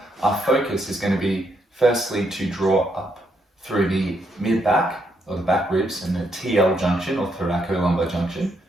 our focus is going to be firstly to draw up through the mid-back, or the back ribs, and the TL junction, or thoracolumbar junction.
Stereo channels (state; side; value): normal; both; correlation 0.76